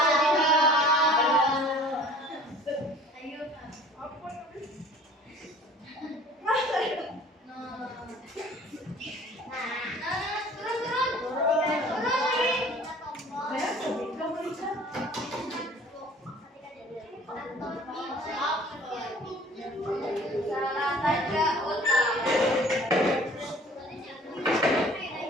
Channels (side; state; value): both; normal; correlation 0.49